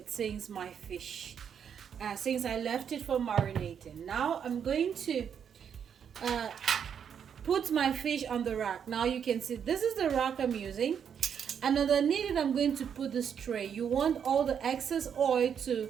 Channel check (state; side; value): quieter; left; 7.9 dB